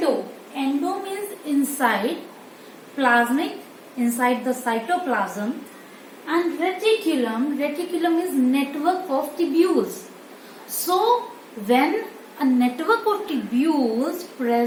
means inside, plasmic inside the cytoplasm, and reticulum is network of tubules. So when a network of tubules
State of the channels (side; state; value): both; identical; correlation 1.00